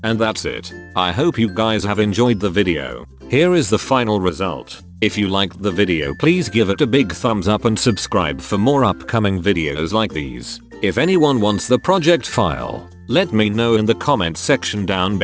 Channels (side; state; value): both; identical; correlation 1.00